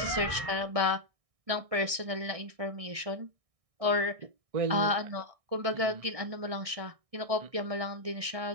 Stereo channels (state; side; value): late; left; 1.6 ms